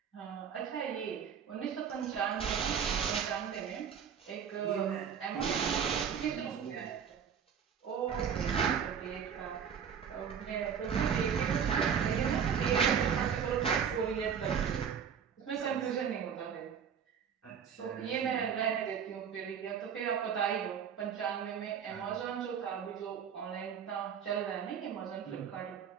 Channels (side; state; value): left; quieter; 7.6 dB